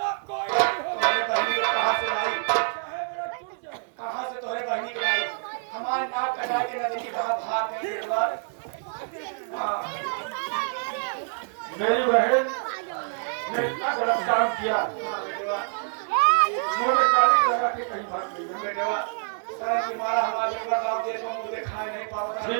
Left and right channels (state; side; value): silent; left; digital silence